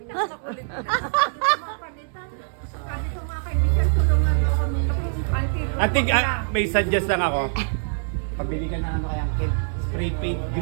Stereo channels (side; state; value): left; silent; 63 dB below the other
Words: Ate, may suggest lang ako. Pabili ka na ano kayang kid, spray paint